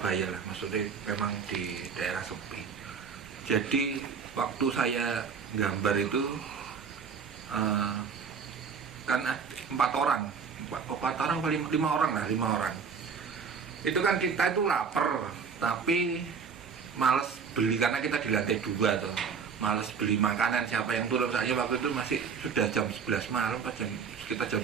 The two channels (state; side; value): quieter; left; 6.0 dB